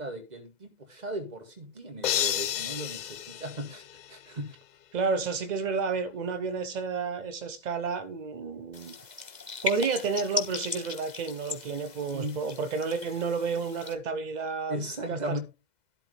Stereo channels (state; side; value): late; left; 2.0 ms